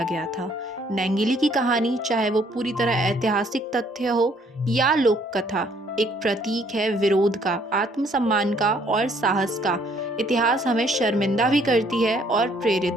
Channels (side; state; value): both; normal; correlation 0.64